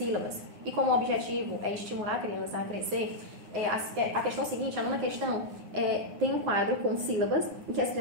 E como o objetivo é estimular a criança a crescer, a questão seguinte, a nona questão, tem um quadro com sílabas em que as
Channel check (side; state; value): left; late; 9.6 ms